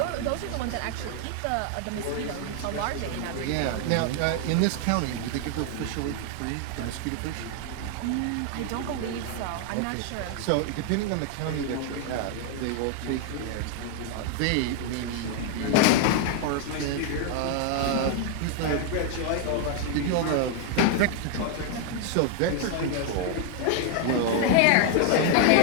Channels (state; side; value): different; both; correlation 0.00